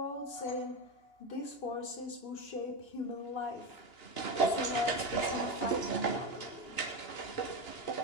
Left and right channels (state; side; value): late; right; 2.9 ms